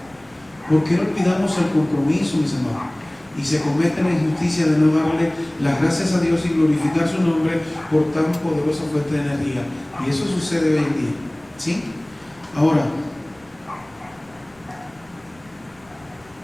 ¿Por qué olvidamos el compromiso, mis amados? Y se comete la injusticia de no darle las gracias a Dios y glorificar su nombre por tan poderosa fuente de energía. Y eso sucede hoy en día, ¿sí? Ahora,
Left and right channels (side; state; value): left; noise; rumble, 30 dB below the sound